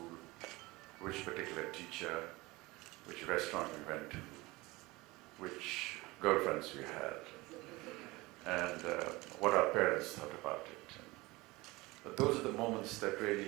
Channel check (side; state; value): left; quieter; 21.8 dB